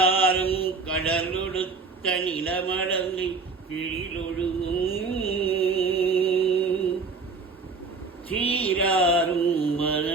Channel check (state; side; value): quieter; left; 4.2 dB